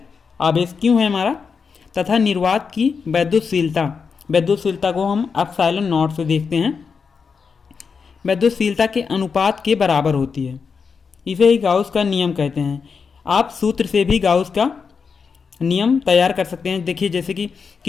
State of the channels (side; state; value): right; quieter; 5.6 dB